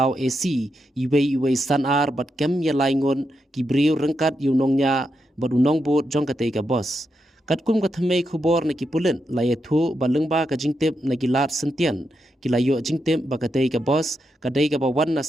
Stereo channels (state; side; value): normal; both; correlation 0.84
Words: AC iway sanar bat kem ya laingon ki briu rengkat yu nongnya bat unong bot jong katay ka boss. Katkum kathamay khubor na ki pulit layethu balengba ka jingtip na gilat sentian kilayo jingtip ba katay ka boss kaday ka bawan na